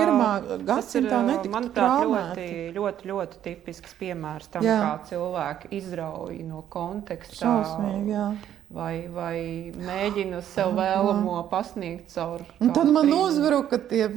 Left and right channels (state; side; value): quieter; left; 10.7 dB